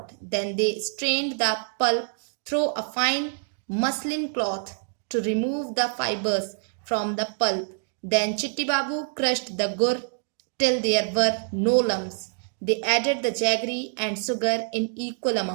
Then they strained the pulp through a fine muslin cloth to remove the fibers from the pulp. Then Chitti Babu crushed the gur till there were no lumps. They added the jaggery and sugar in equal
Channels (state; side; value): silent; left; digital silence